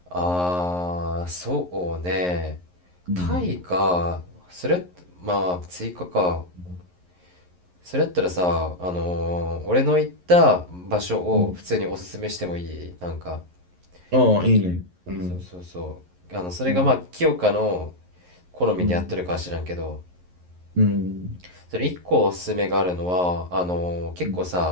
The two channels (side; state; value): left; late; 11 ms